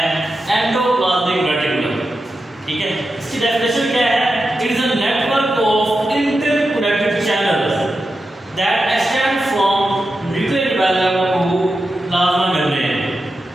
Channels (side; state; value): both; normal; correlation 0.90